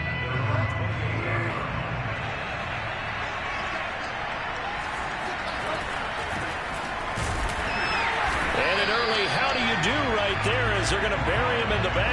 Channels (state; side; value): identical; both; correlation 1.00